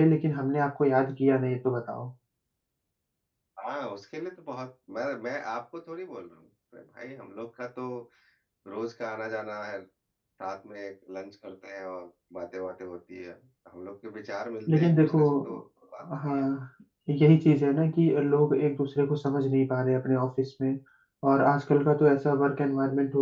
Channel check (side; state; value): both; identical; correlation 1.00